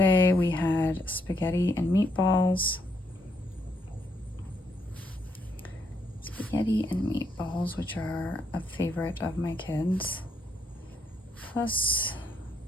we had spaghetti and meatballs. Spaghetti and meatballs, which are a favorite of my kids. Plus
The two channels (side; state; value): both; normal; correlation 0.75